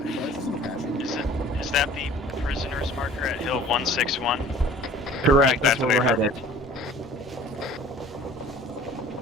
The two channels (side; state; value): both; normal; correlation 0.48